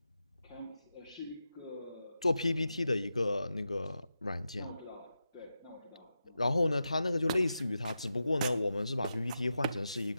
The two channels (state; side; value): inverted; both; correlation -0.89